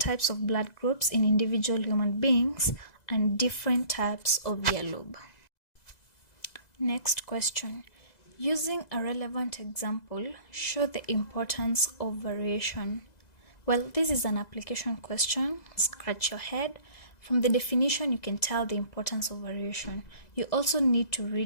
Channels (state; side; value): late; right; 2.0 ms